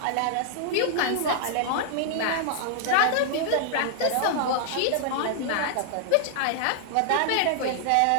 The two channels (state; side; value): different; both; correlation -0.01